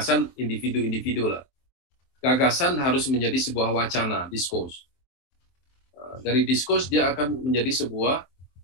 individu-individu lah. Gagasan harus menjadi sebuah wacana, diskurs. Dari diskurs dia akan menjadi sebuah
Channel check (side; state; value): right; late; 23 ms